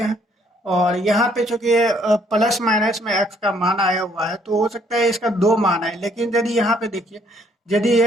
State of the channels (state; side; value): normal; both; correlation 0.65